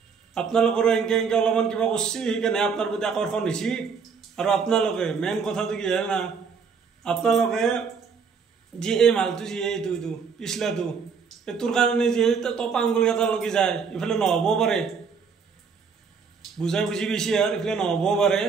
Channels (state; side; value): quieter; left; 5.8 dB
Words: আপোনালোকৰো এনেকৈ অলপমান কিবা কৰিছে সেইকাৰণে আপোনাৰ প্ৰতি আকৰ্ষণ হৈছে আৰু আপোনালোকে মেইন কথাটো কি হয় না আপোনালোকে যি এই মালটো যি এইটো পিছলাটো এইটোৰ কাৰণে যি টপা আঙুলি এটা লাগি যায় ইফালে নহ'বও পাৰে বুজাই বুজি বেছি আৰু ইফালে নহ'বও পাৰে